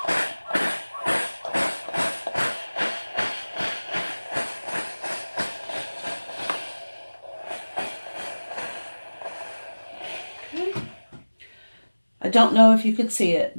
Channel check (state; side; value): inverted; both; correlation -1.00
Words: Okay. I don't know if you could see it,